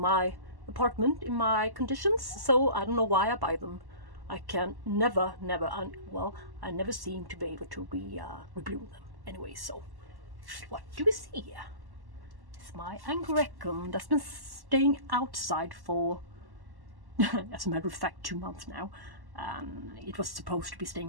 apartment, in my conditions, so I don't know why I buy them. I can never, I never seem to be able to rebloom them. Anyway, so what do we see here? It's my Angraecum that's been staying outside for, as a matter of fact, 2 months now. It was supposed to be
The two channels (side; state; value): left; late; 1.1 ms